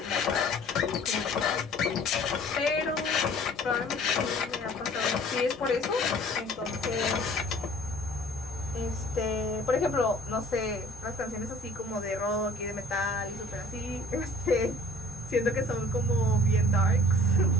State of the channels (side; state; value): both; normal; correlation 0.50